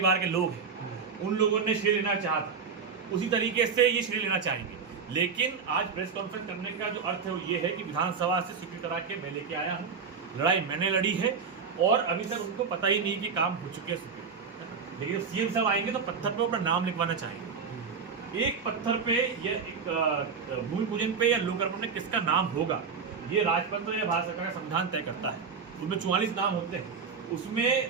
के लोग हैं उन लोगों ने श्रेय लेना चाहा था, उसी तरीके से ये श्रेय लेना चाहेंगे। लेकिन आज प्रेस कॉन्फ्रेंस करने का जो अर्थ है वो ये है कि विधानसभा से स्वीकृत करा के मैं लेके आया हूँ। लड़ाई मैंने लड़ी है और अभी तक उनको पता ही नहीं कि काम हो चुके हैं। लेकिन CM साहब आएंगे तो पत्थर पे अपना नाम लिखवाना चाहेंगे। एक पत्थर पे या एक भूमि पूजन पे या लोकार्पण में किसका नाम होगा ये राजतंत्र या भारत सरकार का संविधान तय करता है। उसमें 44 नाम होते हैं, उसमें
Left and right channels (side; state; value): left; quieter; 5.7 dB